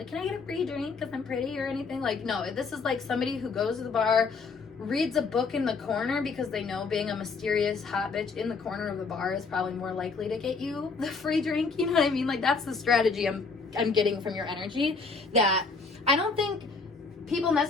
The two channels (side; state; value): right; quieter; 4.4 dB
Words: can I get a free drink because I'm pretty or anything. Like, no, this is like somebody who goes to the bar, reads a book in the corner because they know being a mysterious hot bitch in the corner of the bar is probably more likely to get you the free drink. You know what I mean? Like, that's the strategy I'm getting from your energy, that I don't think people